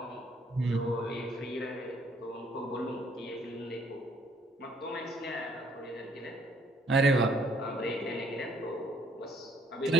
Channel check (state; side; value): normal; both; correlation 0.65